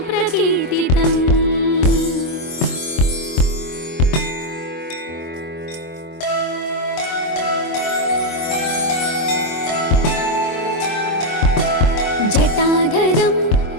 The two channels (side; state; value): right; late; 24 ms